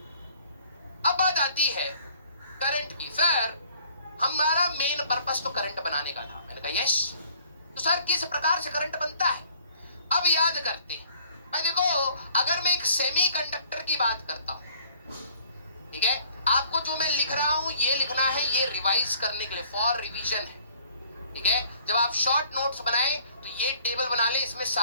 अब बात आती है करंट की। सर हमारा मेन पर्पस तो करंट बनाने का था। मैंने कहा यस, तो सर किस प्रकार से करंट बनता है? अब याद करते हैं भाई। देखो, अगर मैं एक सेमीकंडक्टर की बात करता हूं, ठीक है, आपको जो मैं लिख रहा हूं ये लिखना है, ये रिवाइज करने के लिए, फॉर रिवीजन है। ठीक है, जब आप शॉर्ट नोट्स बनाए तो ये टेबल बना ले, इसमें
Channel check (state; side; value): inverted; both; correlation -0.57